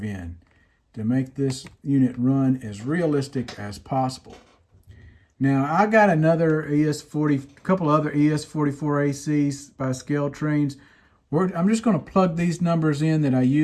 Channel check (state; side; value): identical; both; correlation 1.00